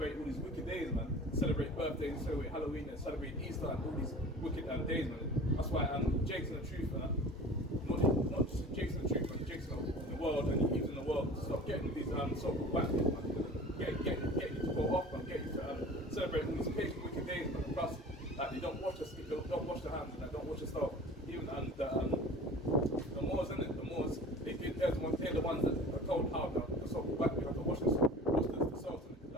all these wicked days, man. Celebrate birthdays, celebrate Halloween, and celebrate Easter, and all these wicked days, man. That's why Jake's in the truth, man. Not just Jake's in the truth, man. Jake's in the world, and he in the world. Stop getting these so-called backdays, man. Get you to go off, man. Get you to celebrate all these pagan wicked days, man. Plus, like, they don't wash their hands, and they don't wash their stuff. Even the Moors, in it, the Moors, they're the ones that are told how the so-called backdays have to wash the cells, and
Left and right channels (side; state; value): both; normal; correlation 0.41